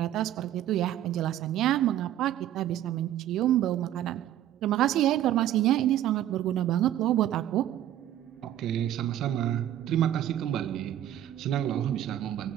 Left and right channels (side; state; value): left; quieter; 12.0 dB